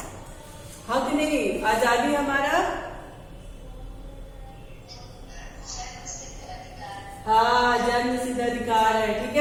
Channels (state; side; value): identical; both; correlation 1.00